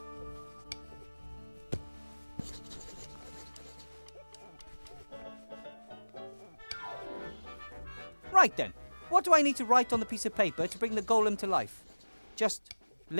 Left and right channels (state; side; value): inverted; both; correlation -1.00